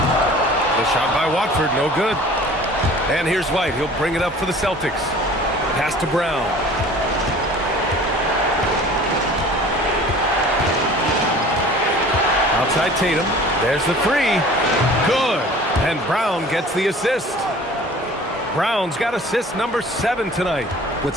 shot by Watford, no good. And here's White. He'll bring it up for the Celtics. Pass to Brown. Outside Tatum. There's the three. Good. And Brown gets the assist. Brown's got assist number 7 tonight.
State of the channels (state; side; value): normal; both; correlation 0.46